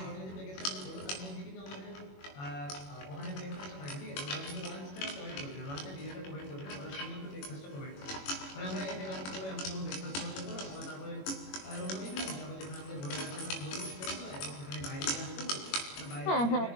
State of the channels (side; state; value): right; late; 21 ms